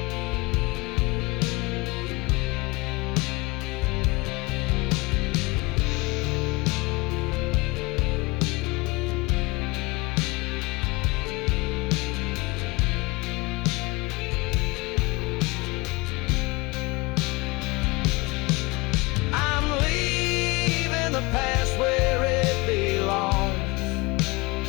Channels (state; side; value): quieter; right; 24.4 dB